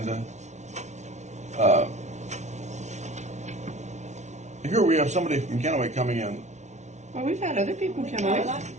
Here we have somebody from Kennewick coming in. Well, we've had other people come out.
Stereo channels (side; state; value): left; late; 0.33 ms